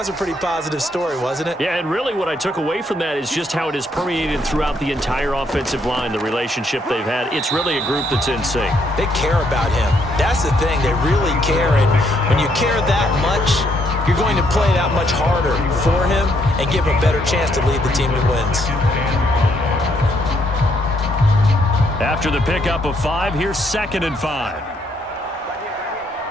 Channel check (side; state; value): both; normal; correlation 0.72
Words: was a pretty positive story, wasn't it? Yeah, and really what I took away from that is just how it is permeated throughout the entire offensive line, the relationship they've had. It's really a group that's in sync. They care about him. That's the thing. They really care. And when you care that much, you're going to play that much harder for him and give him a better chance to lead the team to wins. After the pickup of 5, here's 2nd and 5.